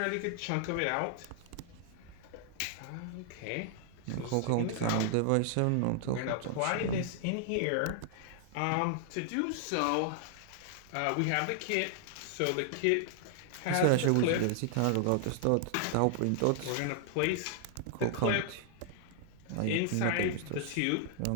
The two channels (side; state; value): both; different; correlation 0.00